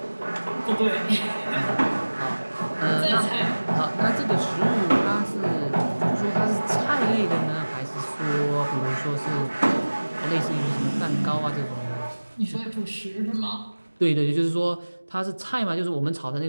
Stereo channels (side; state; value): both; inverted; correlation -1.00